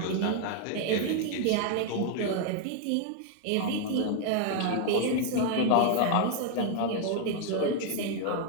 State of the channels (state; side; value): different; both; correlation 0.00